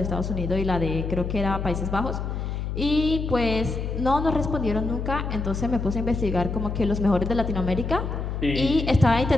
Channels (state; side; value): noise; left; hum, 4 dB below the sound